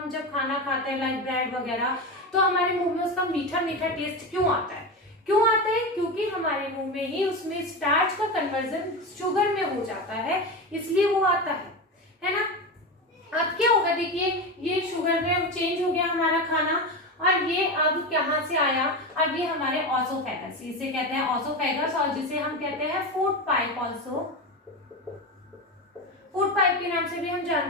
जब खाना खाते हैं लाइक ब्रेड वगैरह, तो हमारे मुंह में उसका मीठा मीठा टेस्ट क्यों आता है, क्यों आता है, क्योंकि हमारे मुंह में ही उसमें स्टार्च का कन्वर्जन शुगर में हो जाता है, इसलिए वो आता है ना। अब क्या होगा, देखिए ये शुगर में चेंज हो गया हमारा खाना, और ये अब कहां से आया, अब ये हमारे ऑसोफेगस, इसे कहते हैं ऑसोफेगस, और जिसे हम कहते हैं food pipe, also food pipe के नाम से भी हम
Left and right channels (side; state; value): both; normal; correlation 0.20